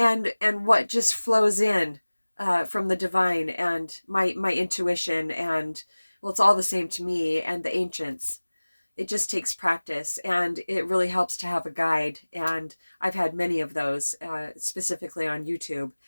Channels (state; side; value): inverted; both; correlation -1.00